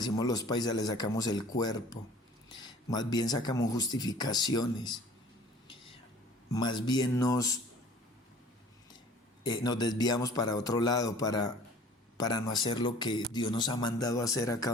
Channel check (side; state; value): both; normal; correlation 0.49